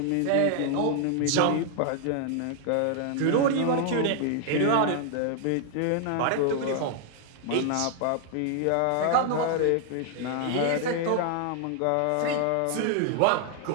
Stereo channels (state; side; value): different; both; correlation 0.00